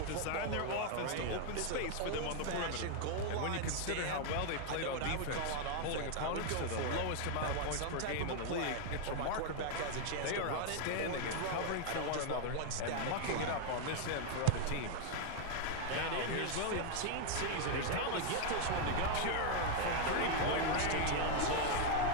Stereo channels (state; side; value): different; both; correlation 0.01